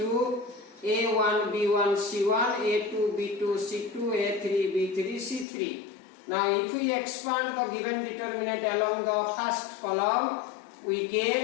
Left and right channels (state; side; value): drops out; right; at 5.5 s